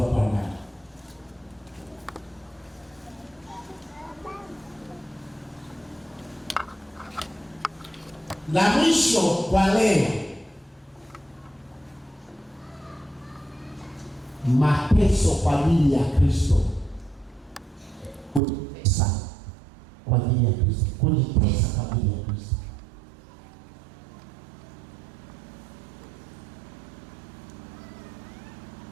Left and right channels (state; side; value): drops out; left; at 18.4 s